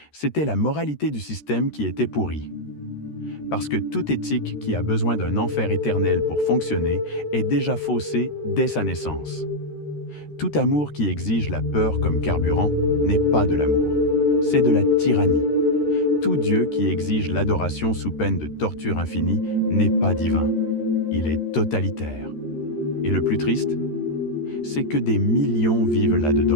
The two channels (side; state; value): right; late; 13 ms